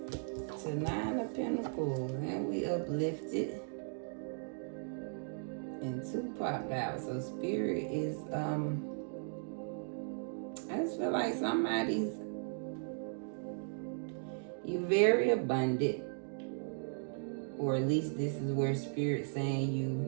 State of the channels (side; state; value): left; silent; digital silence